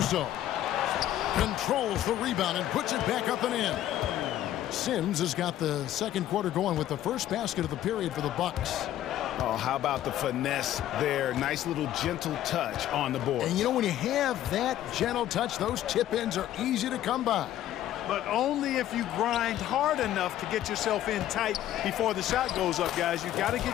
Controls the rebound and puts it back up and in. Sims has got the second quarter going with the first basket of the period for the Bucks. Oh, how about the finesse there? Nice little gentle touch on the board. And you know, when you have that gentle touch, those tip-ins are easy to come by. But only if you grind hard enough to get yourself in tight before the shot goes up, guys. You got to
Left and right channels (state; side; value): quieter; right; 12.7 dB